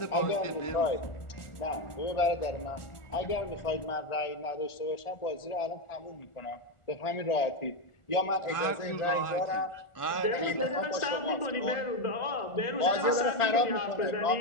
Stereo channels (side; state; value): right; late; 1.4 ms